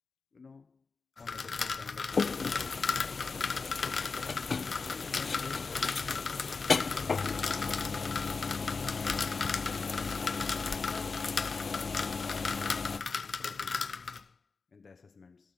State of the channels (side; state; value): right; quieter; 4.5 dB